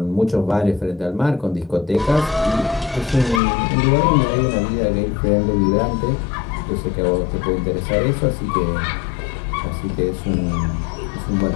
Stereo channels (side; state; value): right; drops out; at 3.4 s